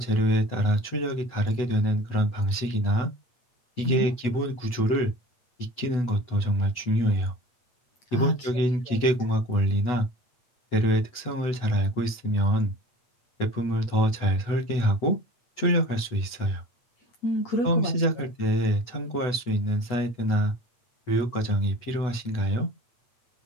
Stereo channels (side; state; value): right; late; 8.1 ms